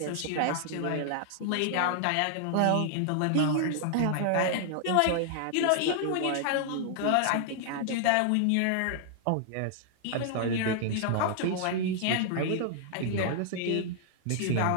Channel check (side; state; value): both; different; correlation -0.01